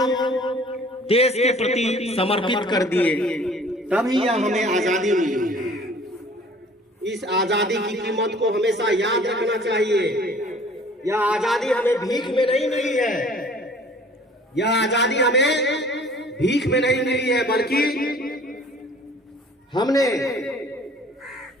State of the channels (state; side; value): normal; both; correlation 0.51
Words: देश के प्रति समर्पित कर दिए, तभी यह हमें आजादी मिली। इस आजादी की कीमत को हमेशा याद रखना चाहिए। यह आजादी हमें भीख में नहीं मिली है, यह आजादी हमें भीख में नहीं मिली है, बल्कि हमने